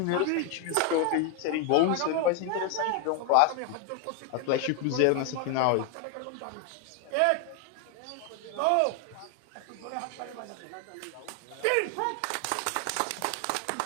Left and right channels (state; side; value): different; both; correlation 0.01